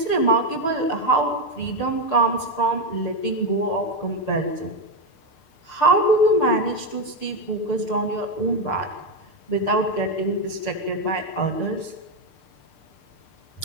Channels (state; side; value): late; right; 6.7 ms